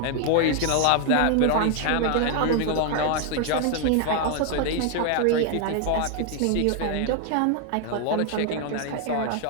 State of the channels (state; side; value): different; both; correlation 0.00